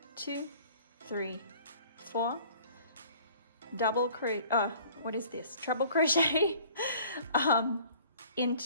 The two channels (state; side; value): inverted; both; correlation -0.52